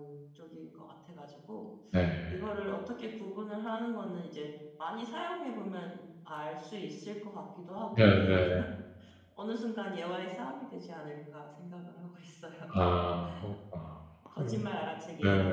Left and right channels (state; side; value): identical; both; correlation 1.00